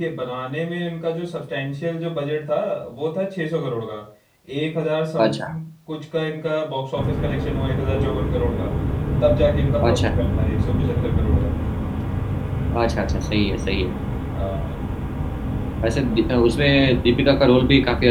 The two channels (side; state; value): both; identical; correlation 1.00